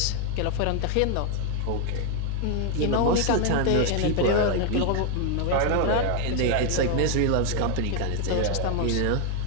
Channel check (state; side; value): different; both; correlation 0.00